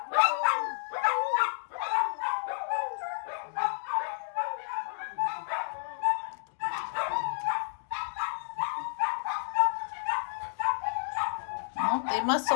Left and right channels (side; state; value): right; silent; digital silence